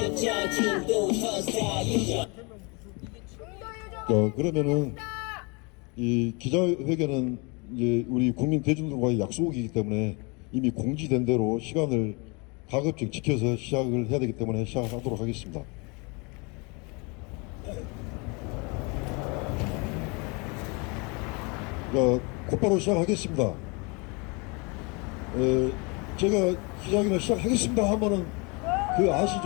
중도 선사유죠. 그러면은 이 기자회견은 이제 우리 국민 대중들과의 약속이기 때문에 이미 공지된 대로 시간을 가급적 지켜서 시작을 해야 되기 때문에 시작하도록 하겠습니다. 곧바로 시작하겠습니다. 제가 기자회견을 시작하겠습니다 하면은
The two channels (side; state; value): right; quieter; 30.1 dB